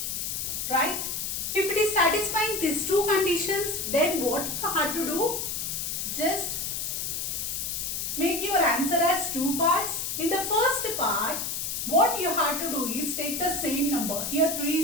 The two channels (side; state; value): left; noise; hiss, 3 dB below the sound